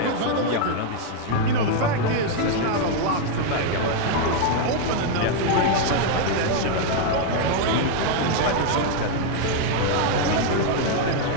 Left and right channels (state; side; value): different; both; correlation 0.00